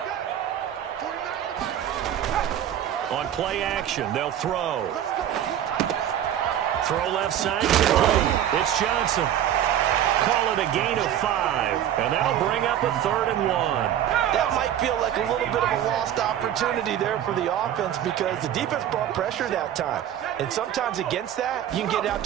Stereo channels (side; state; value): left; quieter; 10.8 dB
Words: On play action, they'll throw. Throw left side. Complete. It's Johnson. Call it a gain of 5, and that'll bring up a 3rd and 1. That might feel like a little bit of a lost opportunity there for the offense because the defense brought pressure that time. And sometimes against that, you can get out